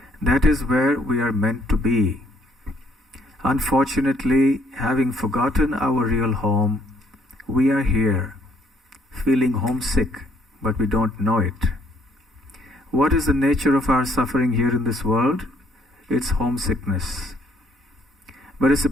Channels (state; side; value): normal; both; correlation 0.66